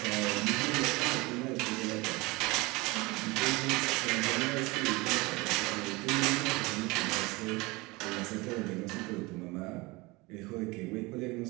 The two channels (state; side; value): quieter; left; 23.9 dB